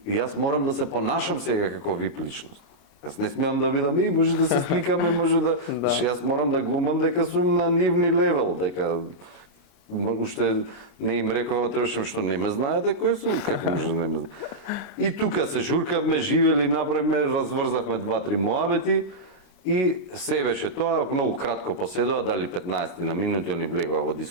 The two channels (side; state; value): right; late; 29 ms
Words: јас морам да се понашам сега како VIP личност. Јас не смеам да видам, може да се сликаме, може да... Јас морам да глумам дека сум на нивни левел, дека... Уште не им рекова, требаше што не ме знаете кој сум, како може да не ме знаете. И тука се журкавме, живели, направивме, разврзавме 2-3 муабети и се беше тоа, многу кратко поседува, дали 15 на минути, они влегува во